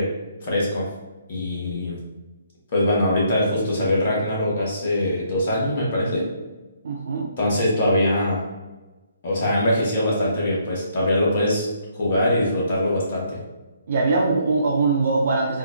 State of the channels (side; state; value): both; inverted; correlation -0.69